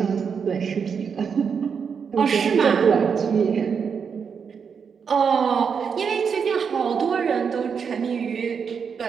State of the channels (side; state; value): left; quieter; 6.4 dB